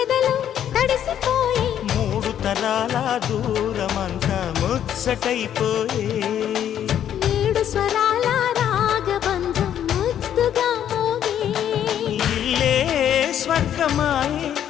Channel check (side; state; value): right; quieter; 10.1 dB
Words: తడిసిపోయే మూడు తరాల దూరమంతా ముచ్చటైపోయే ఏడు స్వరాల రాగబంధం ముద్దుగా మోగే ఇల్లే స్వర్గమాయే